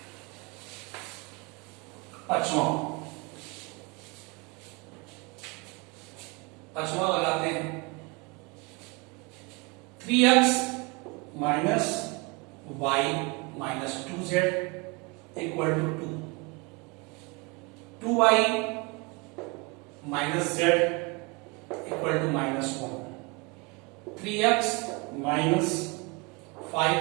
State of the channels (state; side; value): quieter; left; 28.6 dB